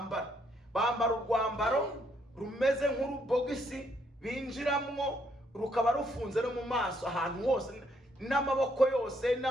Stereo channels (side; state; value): both; normal; correlation 0.72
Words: urwambaro rumeze nk'urubogisi binjiramo, rukaba rufunze no mu maso ahantu hose. n'amaboko yose